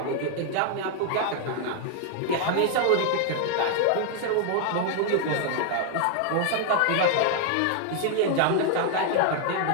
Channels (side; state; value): both; different; correlation 0.00